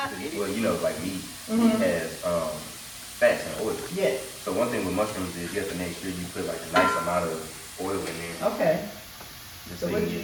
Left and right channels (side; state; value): both; identical; correlation 1.00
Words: Well, like meat has fats and oil. Yes. So one thing with mushrooms is you have to make sure you put like a nice amount of oil in there. Okay. So